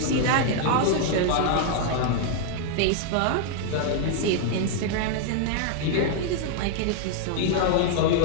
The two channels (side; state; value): both; different; correlation 0.00